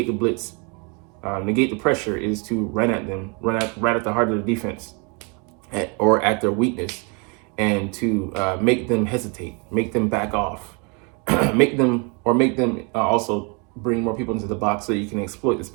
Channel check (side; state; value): left; quieter; 33.1 dB